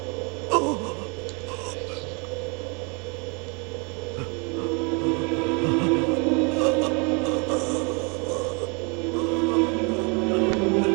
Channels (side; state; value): left; quieter; 33.1 dB